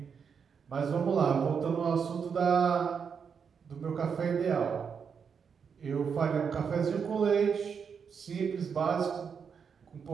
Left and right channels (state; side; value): quieter; left; 6.5 dB